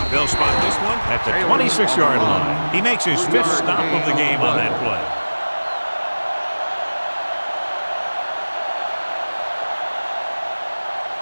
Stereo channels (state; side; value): inverted; both; correlation -1.00